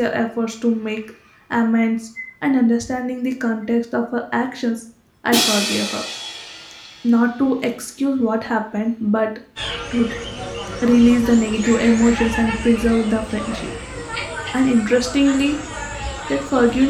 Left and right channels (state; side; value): identical; both; correlation 1.00